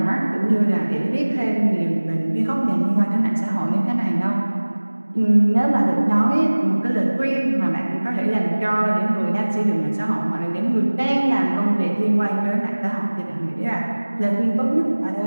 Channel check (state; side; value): inverted; both; correlation -1.00